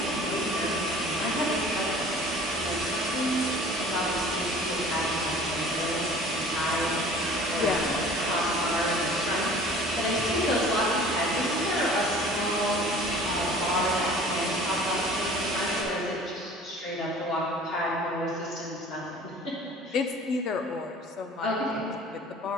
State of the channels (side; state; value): both; normal; correlation 0.46